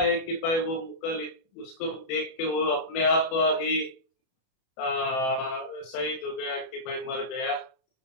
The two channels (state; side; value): late; right; 31 ms